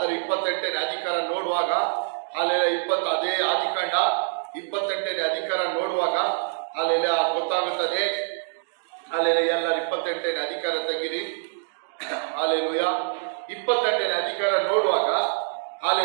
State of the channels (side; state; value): left; silent; digital silence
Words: 28ನೇ ಅಧಿಕಾರ ನೋಡುವಾಗ, ಅಲ್ಲೆಲ್ಲ ಅದೇ ಆದಿಕಾಂಡ 28ನೇ ಅಧಿಕಾರ ನೋಡುವಾಗ ಅಲ್ಲೆಲ್ಲ ಗೊತ್ತಾಗುತ್ತದೆ. ಅಲ್ಲೆಲ್ಲ ಎಲ್ಲರೂ 28ನೇ ಅಧಿಕಾರ ತೆಗಿರಿ. ಅಲ್ಲೆಲೂಯ. 28ನೇ ಅಧಿಕಾರ ನೋಡುವಾಗ